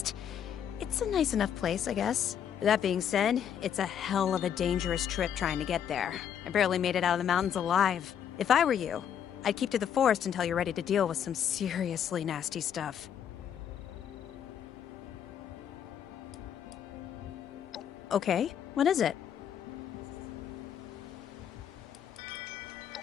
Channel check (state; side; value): quieter; right; 8.9 dB